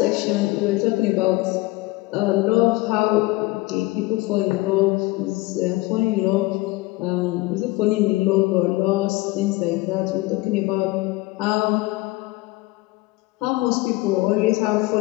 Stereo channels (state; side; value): quieter; right; 21.1 dB